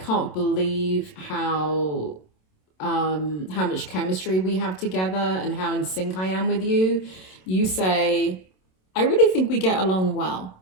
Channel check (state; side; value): late; right; 27 ms